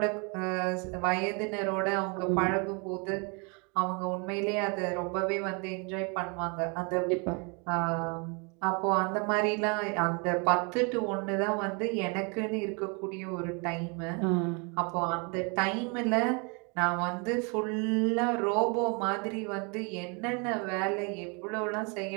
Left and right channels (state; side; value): quieter; left; 33.2 dB